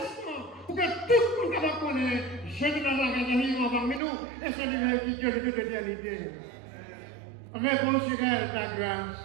mission. Pour que tout le monde capable de connaître. Jésus dans la grande parmi nous. Et c'est lui qui est le Dieu de l'éternité. Réponds sur elle ta grâce.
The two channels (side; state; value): left; drops out; at 4.0 s